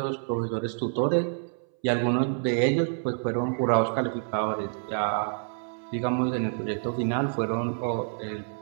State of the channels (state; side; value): silent; left; 60 dB below the other